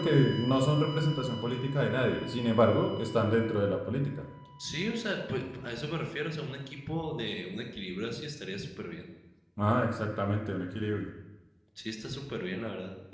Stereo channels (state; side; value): identical; both; correlation 1.00